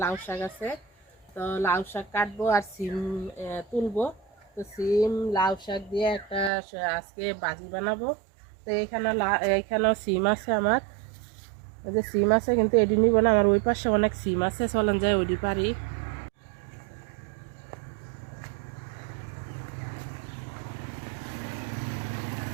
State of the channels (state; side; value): drops out; left; at 6.5 s